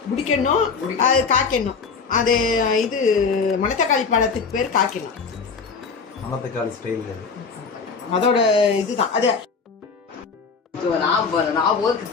முடிக்கணும், அது காய்க்கணும். அது இது மணத்தக்காளி பழத்துக்கு பேர் காய்க்கணும். மணத்தக்காளி ஸ்டைல் அது. அதோட இதுதான் அது. நான் ஒரு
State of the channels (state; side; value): quieter; right; 5.2 dB